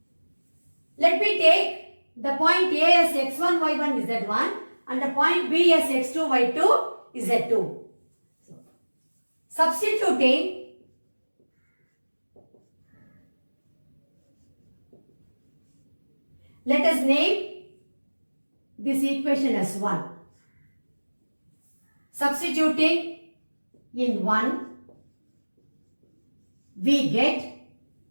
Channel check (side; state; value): both; inverted; correlation -1.00